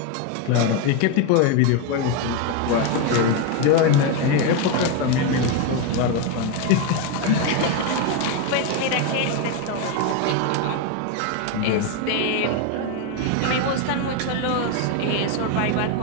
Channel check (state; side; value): different; both; correlation 0.02